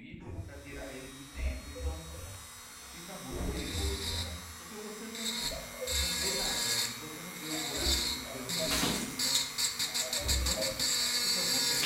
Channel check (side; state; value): both; identical; correlation 1.00